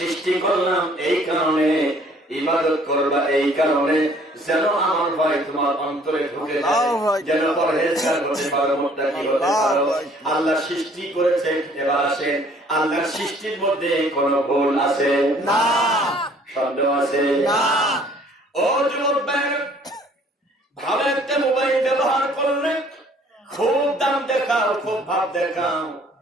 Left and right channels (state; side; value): normal; both; correlation 0.57